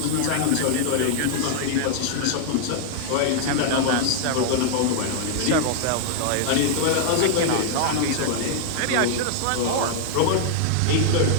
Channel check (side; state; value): both; different; correlation -0.01